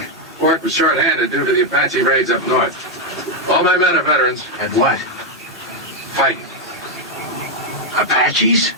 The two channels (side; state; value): both; normal; correlation 0.01